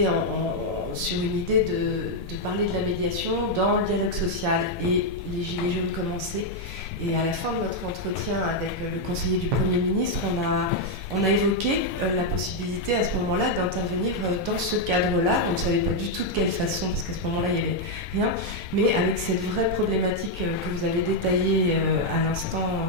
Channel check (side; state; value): both; normal; correlation 0.00